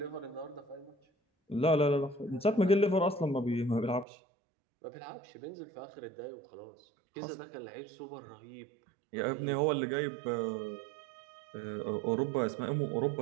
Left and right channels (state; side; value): drops out; left; at 4.0 s